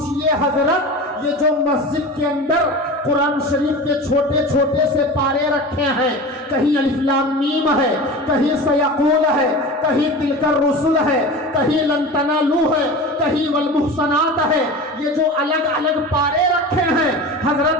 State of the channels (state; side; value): normal; both; correlation 0.32